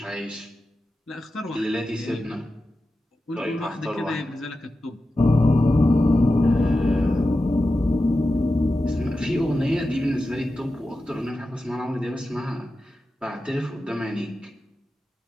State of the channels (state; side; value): normal; both; correlation 0.92